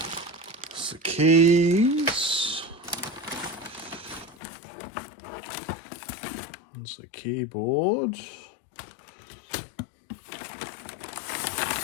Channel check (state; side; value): drops out; right; at 4.4 s